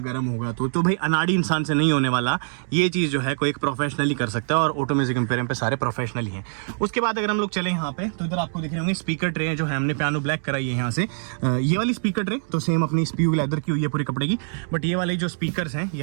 गर्म होगा तो भाई अनाड़ी इंसान से नहीं होने वाला। ये चीज़ जो है कोई एक प्रोफेशनली कर सकता है और ऑटो म्यूजिक एम्पोरियम पे सारे प्रोफेशनल ही हैं। उसके बाद अगर हम लोग चले यहाँ पे तो इधर आपको दिख रहे होंगे स्पीकर ट्रे जो है हमने पियानो ब्लैक कराई है यहाँ से। ये वाली स्पीकर ट्रे तो सेम अपनी स्पीक लेदर की हुई है पूरे कपड़े की, बट ये वाले जो स्पीकर्स हैं ये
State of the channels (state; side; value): silent; left; 63 dB below the other